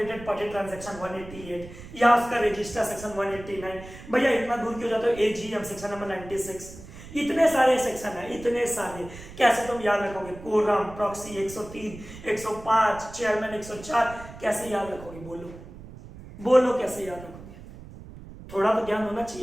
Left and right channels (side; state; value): right; noise; rumble, 16 dB below the sound